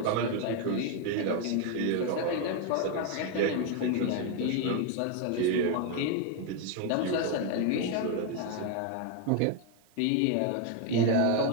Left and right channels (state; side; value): different; both; correlation 0.01